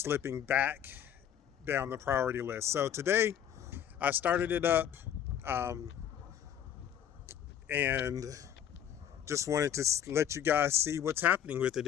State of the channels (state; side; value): quieter; right; 9.6 dB